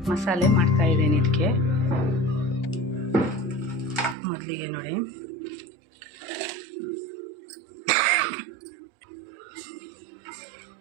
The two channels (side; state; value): left; drops out; at 4.2 s